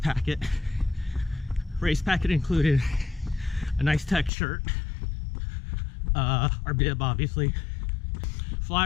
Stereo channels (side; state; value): right; drops out; at 4.3 s